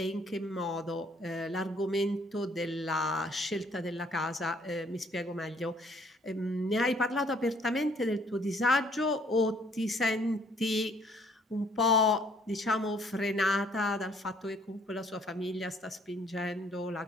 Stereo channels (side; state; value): both; normal; correlation 0.62